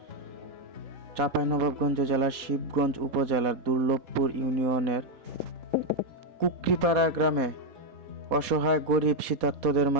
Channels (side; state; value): left; late; 4.1 ms